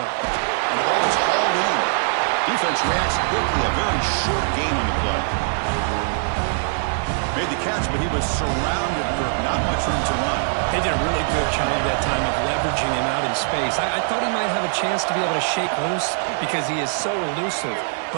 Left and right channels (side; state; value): left; silent; 64 dB below the other